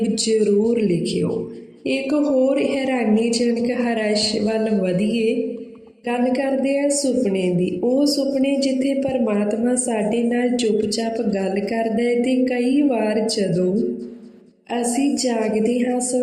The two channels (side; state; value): both; identical; correlation 1.00